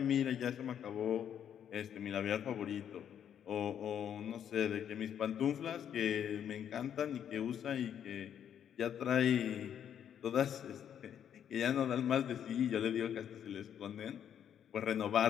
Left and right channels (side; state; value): right; quieter; 9.2 dB